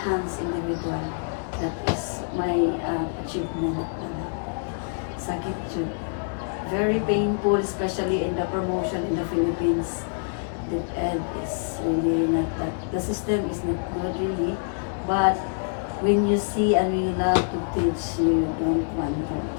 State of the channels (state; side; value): silent; right; 61 dB below the other